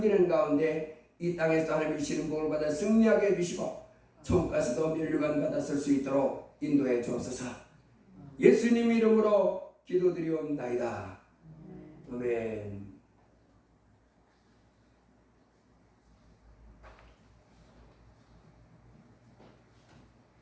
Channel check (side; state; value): both; identical; correlation 1.00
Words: 가운데 이 땅에서 하나님이 주시는 복을 받아 승리하게 해주시고 천국 가서도 면류관 받아 쓸 수 있도록 인도해 주옵소서. 예수님 이름으로 기도드리옵나이다. 아멘.